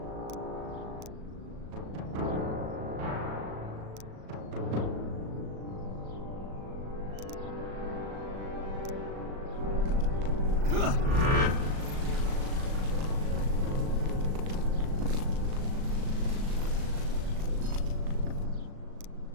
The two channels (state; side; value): late; left; 37 ms